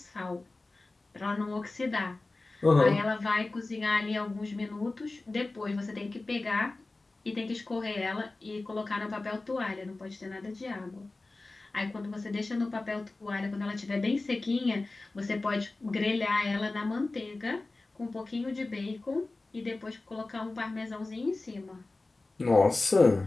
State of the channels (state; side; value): quieter; right; 3.2 dB